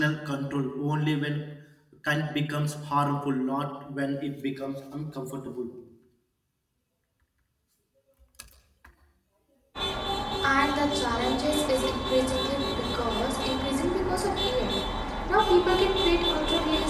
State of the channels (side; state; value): both; identical; correlation 1.00